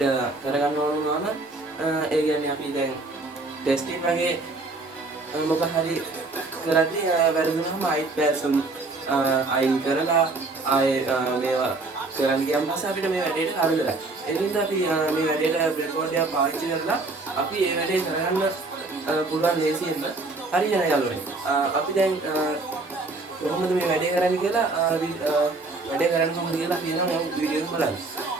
කරගන්න ඕන වුණාම ඒ කියන්නේ අපි දැන් ටෙස්ටිං වගේ මොකක් හරි කරද්දී වැරදුනහම ආයෙත් පැසම් අයින් කරලා ආයේ මේවා කරන්න ගියම පස්සේ අපිට මේ වැඩේට හරියලා. ඒ නිසා අපි මේ වැඩේට breadboard එක පාවිච්චි කරලා අපි මේ වැඩේ කරගන්න පුළුවන් ලේසියෙන්ම හරියන යාළුවනේ. අපි දැන් කොහොමද මේ වැඩේ කරන්නේ කියලා වැඩේ කරන්න කොහොමද කියලා අපි නම් වීඩියෝ එක බලන්න.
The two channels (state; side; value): quieter; left; 3.4 dB